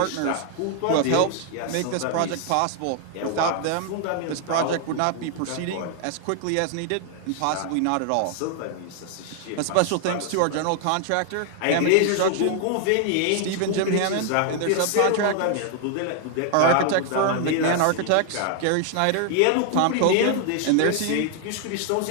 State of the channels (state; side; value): different; both; correlation 0.00